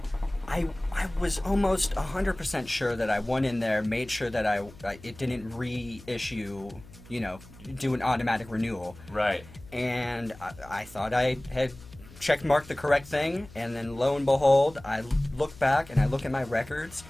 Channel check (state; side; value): noise; left; hum, 20 dB below the sound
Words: I was almost 100% sure that I went in there, made sure that it didn't reissue, do an automatic renewal. Right. And I thought I had checkmarked the correct thing, and then lo and behold, I look back and I look at my records,